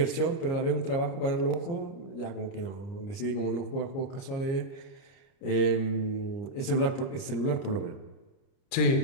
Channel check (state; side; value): late; right; 29 ms